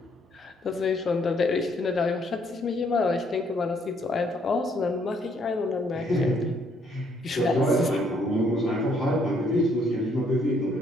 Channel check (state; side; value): normal; both; correlation 0.68